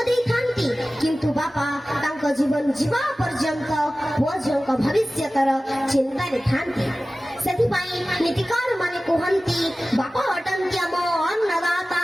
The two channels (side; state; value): both; normal; correlation 0.96